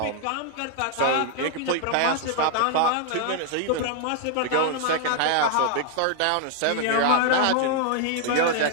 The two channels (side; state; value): both; different; correlation 0.00